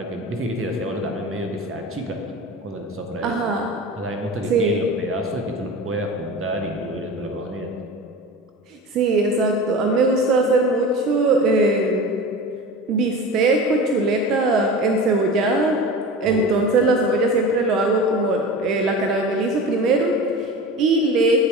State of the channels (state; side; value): normal; both; correlation 0.32